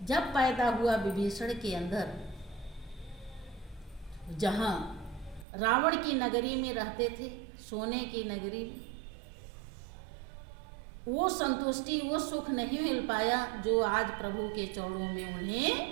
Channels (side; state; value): left; drops out; at 5.5 s